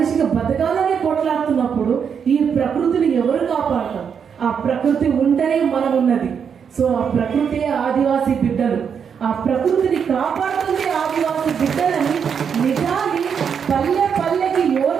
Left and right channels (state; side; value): quieter; left; 7.1 dB